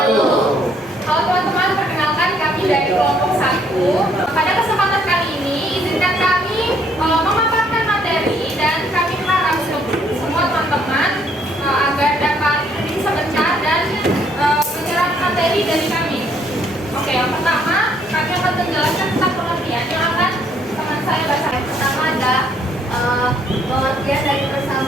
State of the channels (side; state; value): both; normal; correlation 0.67